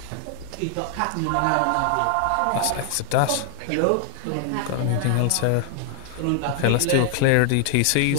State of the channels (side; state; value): both; different; correlation 0.00